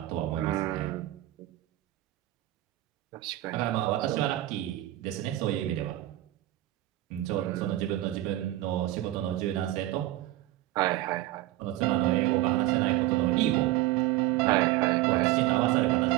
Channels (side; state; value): left; quieter; 15.6 dB